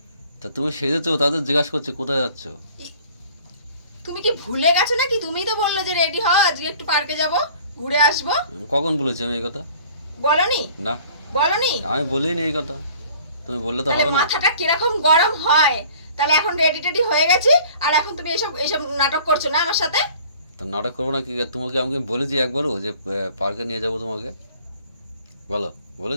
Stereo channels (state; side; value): inverted; both; correlation -0.51